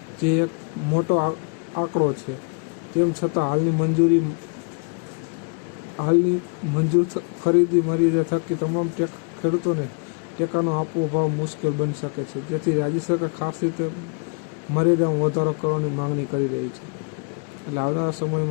જે એક મોટો આંકડો છે। તેમ છતાં હાલની મંજૂર ખરીદી મર્યાદા થકી તમામ ખેડૂતોને ટેકાનો આપવો ભાવ મુશ્કેલ બની શકે છે, જેથી રાજ્ય સરકાર ખાસ રીતે મર્યાદામાં વધારો કરવાની માંગણી કરી રહી છે। એટલે આવનારા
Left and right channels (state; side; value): quieter; right; 37.8 dB